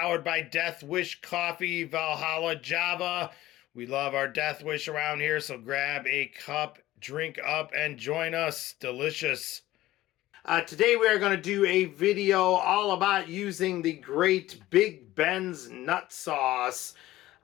by Death Wish Coffee, Valhalla Java. We love our Death Wish around here, so grab a cup, drink up, and join us. Delicious. Today we are going to do a video all about using the great bigbensnutsauce.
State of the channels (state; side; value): quieter; right; 15.9 dB